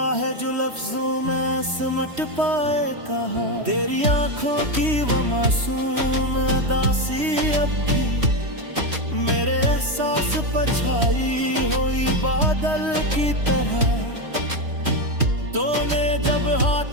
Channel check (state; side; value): late; left; 3.1 ms